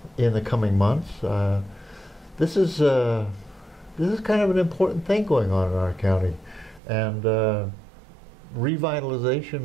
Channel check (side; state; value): left; drops out; at 6.8 s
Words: in the coming months. This is kind of an important thing going on in our county, and revitalization